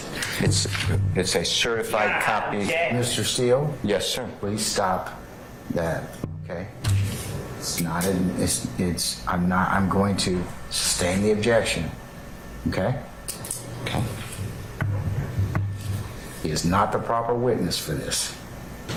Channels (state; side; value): identical; both; correlation 1.00